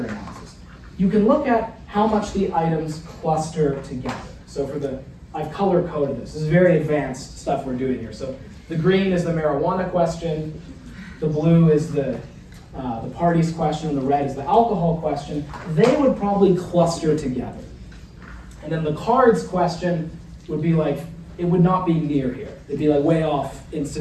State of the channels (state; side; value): identical; both; correlation 1.00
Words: analysis. You can look at how much the items cluster together. So I've color-coded this. This is very advanced stuff we're doing here. So the green is the marijuana question, the blue is the parties question, and the red is the alcohol question. They would probably cluster together. And then the cards question would be like, it would not be near here. It'd be like way off in